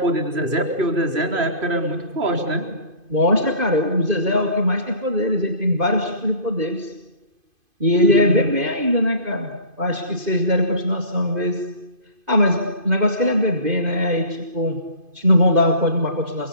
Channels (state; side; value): late; left; 2.5 ms